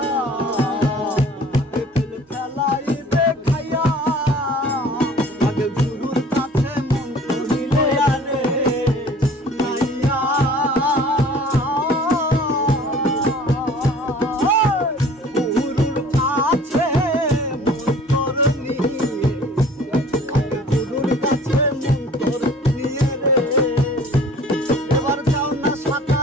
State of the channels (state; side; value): normal; both; correlation 0.49